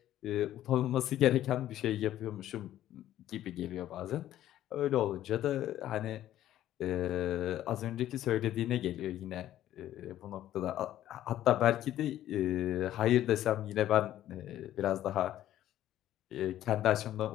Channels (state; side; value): quieter; right; 12.8 dB